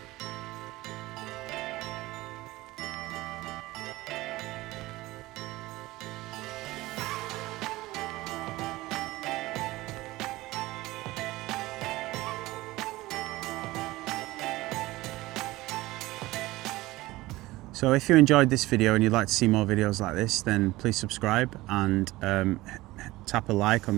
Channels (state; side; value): quieter; left; 18.9 dB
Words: So if you enjoyed this video and you'd like to see more videos like this, then please subscribe and tap a like